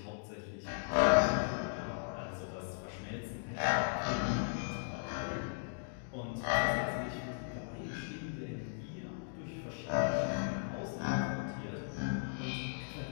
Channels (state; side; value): silent; right; digital silence